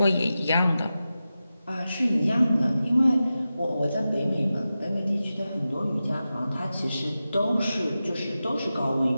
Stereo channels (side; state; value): both; inverted; correlation -0.93